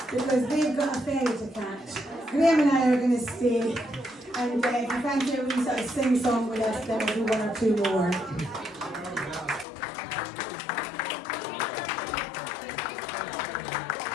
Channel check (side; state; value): right; drops out; at 9.7 s